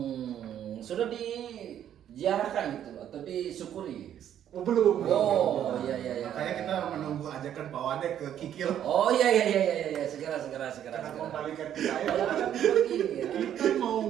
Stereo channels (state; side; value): quieter; left; 10.3 dB